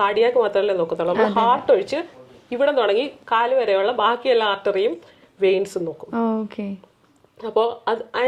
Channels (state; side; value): identical; both; correlation 1.00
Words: കാർഡിയാക്ക് മാത്രമല്ലേ നോക്കത്തുള്ളൂ. നമ്മൾ ഹാർട്ട് ഒഴിച്ച് ഇവിടെ തുടങ്ങി കാല് വരെയുള്ള ബാക്കി എല്ലാ ആർട്ടറിയും വെയിൻസും നോക്കും. അപ്പോൾ അത്